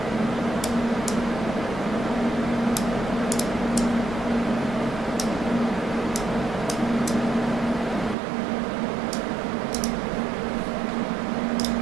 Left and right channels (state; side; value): drops out; left; at 8.2 s